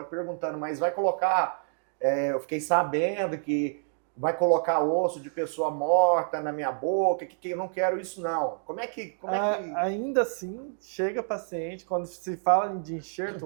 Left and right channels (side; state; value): left; silent; digital silence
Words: perguntando, mas vai colocar... eu fiquei sabendo que vai colocar osso de pessoa morta na minha boca, que eu não quero isso não. Como é que... Ainda assim, chega paciente, quando se fala de